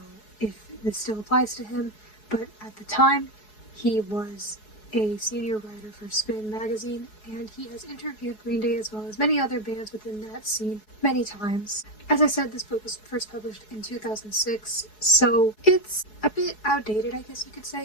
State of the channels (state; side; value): late; right; 4.7 ms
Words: if this still applies to him, but at the time he was a senior writer for Spin magazine, and he has interviewed Green Day as well as many other bands within that scene many times. As I said, this book was first published in 2006, so it's a bit outdated, I guess you could